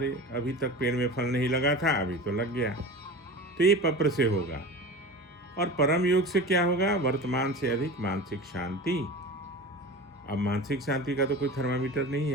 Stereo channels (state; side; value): normal; both; correlation 0.33